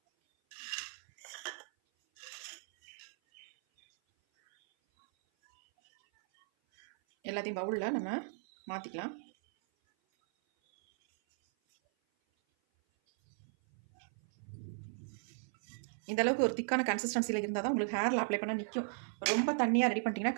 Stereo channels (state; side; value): silent; left; 54 dB below the other